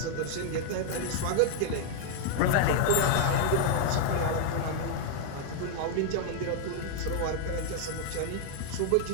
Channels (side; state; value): both; different; correlation 0.00